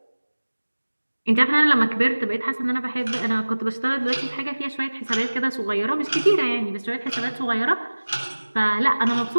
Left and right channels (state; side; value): inverted; both; correlation -1.00